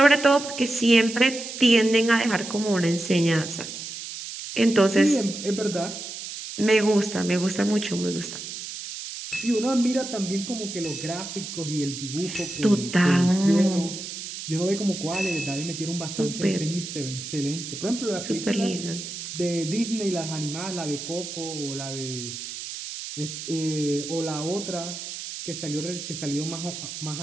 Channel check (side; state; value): right; noise; hiss, 9 dB below the sound